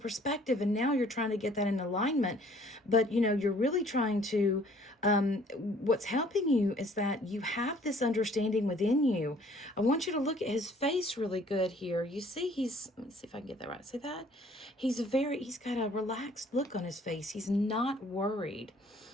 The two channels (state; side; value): normal; both; correlation 0.57